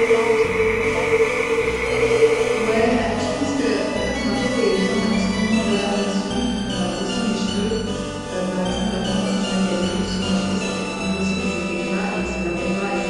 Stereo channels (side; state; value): both; identical; correlation 1.00